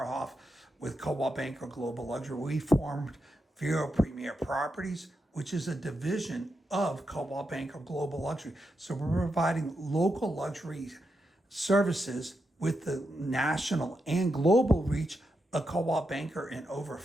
with Cobalt Banker Global Luxury. We formed Vero Premier Properties, which is a division of Cobalt Banker Global Luxury. So we're providing local luxury services with the national and global reach a Cobalt Banker in over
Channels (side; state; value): both; normal; correlation 0.85